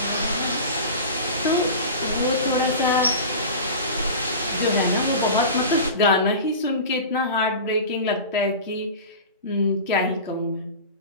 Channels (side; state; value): both; inverted; correlation -0.32